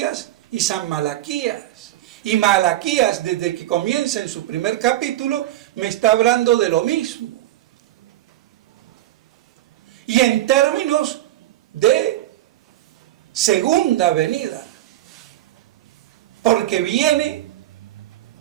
y San Malaquías. Y Malaquías, desde que comienza en su primer capítulo, me está hablando de lo mismo. Y en términos de segunda venida. Porque viene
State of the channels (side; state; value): left; quieter; 14.5 dB